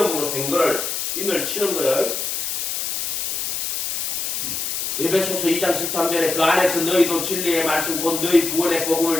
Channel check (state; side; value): noise; left; hiss, 2 dB below the sound